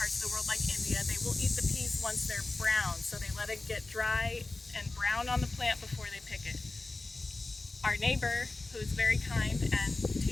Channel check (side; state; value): right; quieter; 3.2 dB